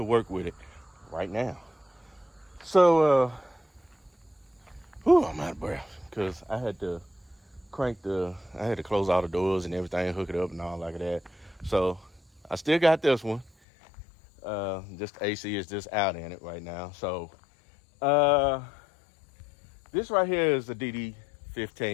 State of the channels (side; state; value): right; drops out; at 13.5 s